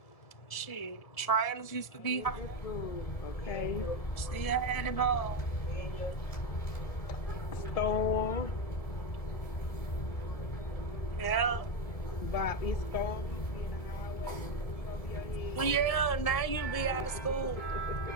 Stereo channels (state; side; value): late; right; 1.7 ms